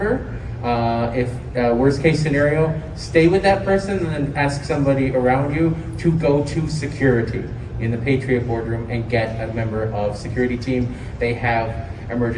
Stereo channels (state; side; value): identical; both; correlation 1.00